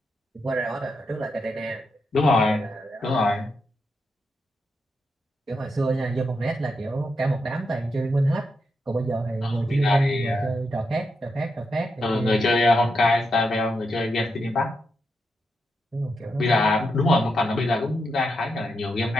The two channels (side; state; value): both; normal; correlation 0.84